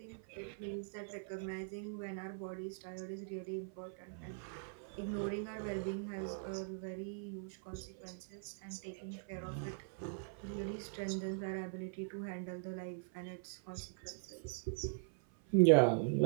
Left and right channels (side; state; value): left; silent; 50 dB below the other